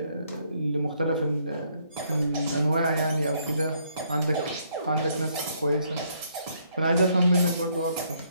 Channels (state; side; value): inverted; both; correlation -0.70